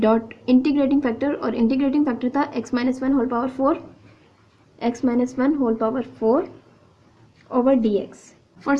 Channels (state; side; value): identical; both; correlation 1.00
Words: integrating factor, और इंटीग्रेटिंग फैक्टर था x minus 1 whole power 4, x minus 1 whole power 4 over dx. For